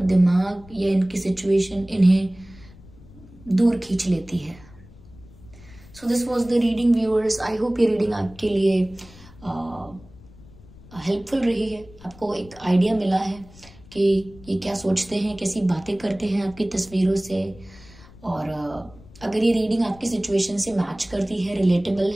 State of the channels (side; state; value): left; noise; rumble, 22 dB below the sound